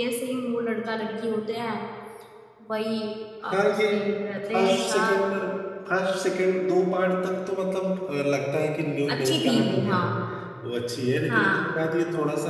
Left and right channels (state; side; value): identical; both; correlation 1.00